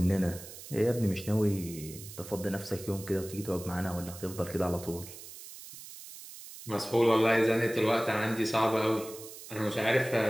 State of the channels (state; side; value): noise; right; hiss, 14 dB below the sound